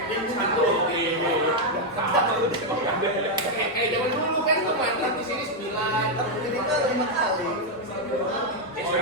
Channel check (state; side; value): normal; both; correlation 0.01